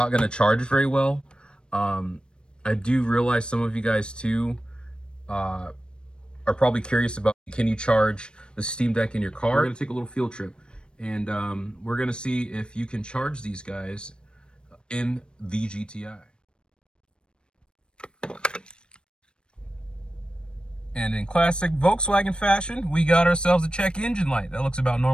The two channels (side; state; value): right; late; 0.053 ms